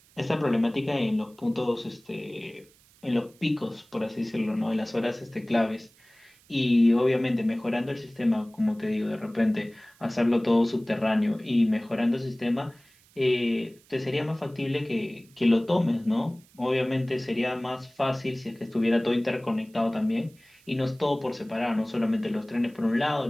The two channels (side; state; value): right; noise; hiss, 29 dB below the sound